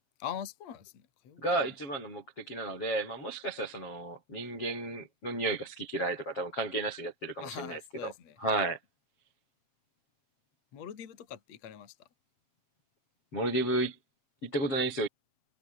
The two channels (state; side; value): late; right; 7.4 ms